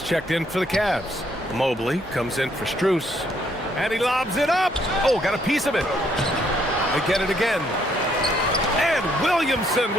checked in for the Cavs. Mobley comes in for Strus, and he lobs it up. Oh, got a piece of it. They get it again. And Williamson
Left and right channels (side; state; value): both; normal; correlation 0.70